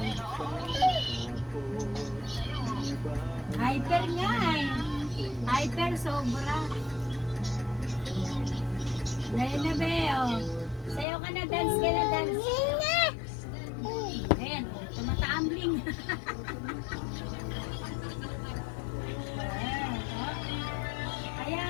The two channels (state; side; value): drops out; right; at 11.1 s